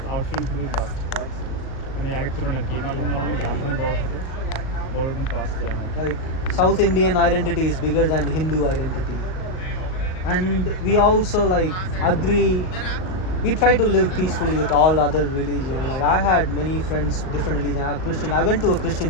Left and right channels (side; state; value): right; late; 38 ms